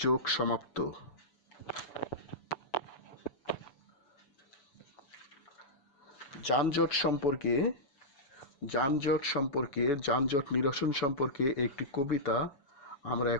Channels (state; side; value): late; right; 7.0 ms